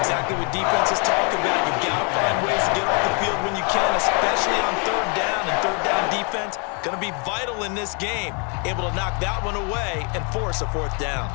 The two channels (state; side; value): quieter; right; 36.8 dB